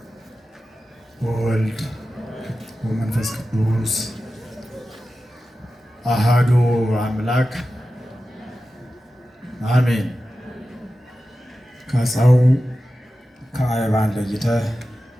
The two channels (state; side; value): normal; both; correlation 0.93